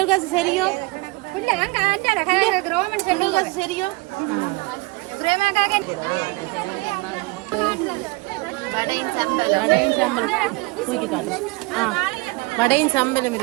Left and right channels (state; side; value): quieter; left; 24.2 dB